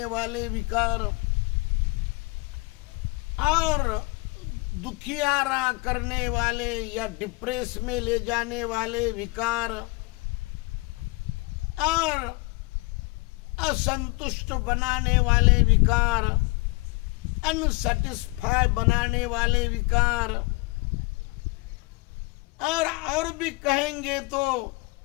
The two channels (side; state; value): right; quieter; 25.5 dB